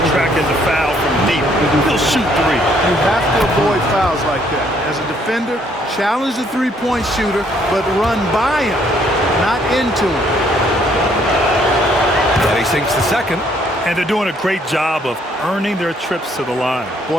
attracting the foul from deep. He'll shoot 3. You have to avoid fouls like that. As a defender, challenge the three-point shooter, but run by him, not into him. And he sinks the second. And they're doing a great job of earning their trips to the line.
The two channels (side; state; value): both; normal; correlation 0.66